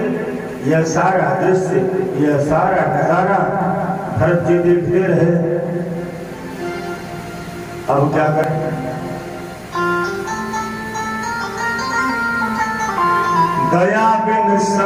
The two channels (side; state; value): both; identical; correlation 1.00